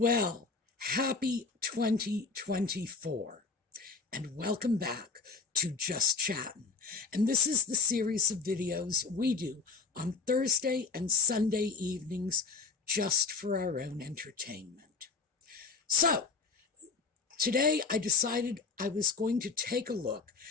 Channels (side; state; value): right; quieter; 4.5 dB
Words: happy 2024, and welcome back to Just Chattin'. And this is the series of videos we do on Thursday and Sunday evenings just for our own entertainment. So, today I decided I was going to take a look